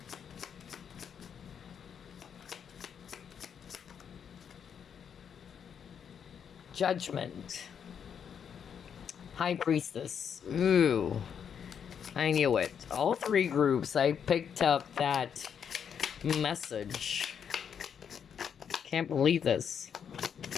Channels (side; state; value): right; quieter; 7.7 dB